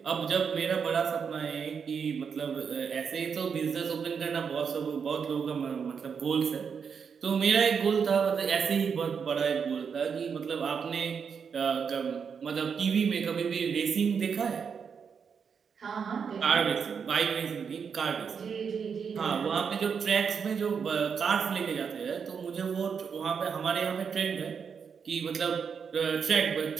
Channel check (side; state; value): left; quieter; 6.4 dB